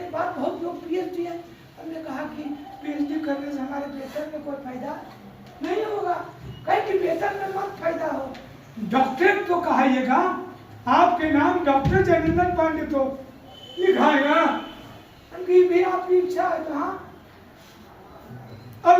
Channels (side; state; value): both; identical; correlation 1.00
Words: के बाद बहुत लोग पीएचडी है। हमने कहा कि पीएचडी करने से हमारे वेतन में कोई फायदा नहीं होगा, कहीं कि वेतन में मत फायदा हो, डॉक्टरेट तो कहाइएगा, आपके नाम डॉक्टर जयनंदन पांडे तो लिखाएगा। उनकी भी आपकी इच्छा है तो हाँ।